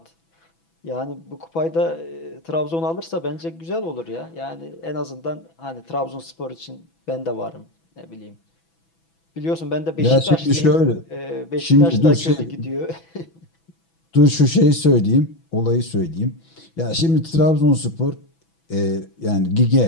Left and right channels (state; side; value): late; right; 6.0 ms